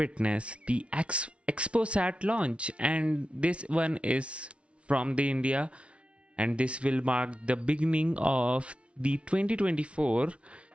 the XpoSAT launch. And this one is from the India, and this will mark the beginning of the 2024.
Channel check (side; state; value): left; late; 0.061 ms